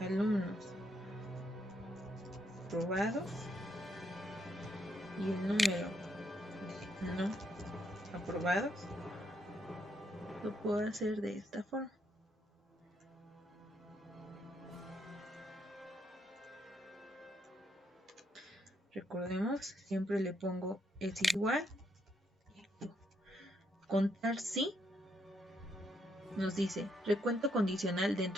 aprobados y el número de no aprobados, lo puedo hacer de esta forma. Recordemos, siempre le pongo es igual. Contar si nos dice recuento condicional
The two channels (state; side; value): normal; both; correlation 0.76